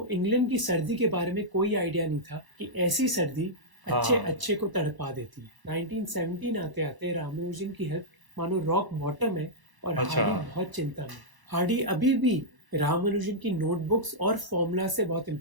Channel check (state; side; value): late; left; 1.0 ms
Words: इंग्लैंड की सर्दी के बारे में कोई आइडिया नहीं था कि ऐसी सर्दी अच्छे को तड़पा देती है। 1917 आते आते रामानुजन की हेल्थ मानो रॉक बॉटम है और हार्डी बहुत चिंता में। हार्डी अभी भी रामानुजन की नोटबुक्स और फॉर्मूला से बहुत